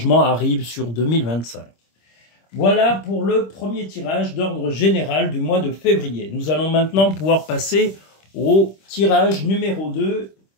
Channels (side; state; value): right; late; 26 ms